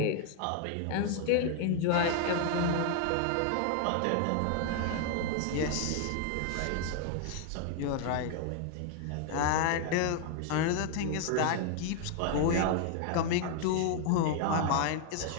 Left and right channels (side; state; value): both; different; correlation 0.00